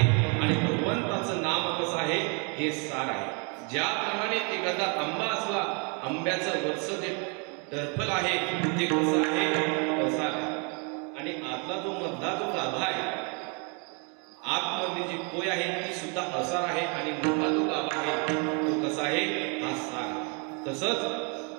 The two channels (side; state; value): left; quieter; 35.1 dB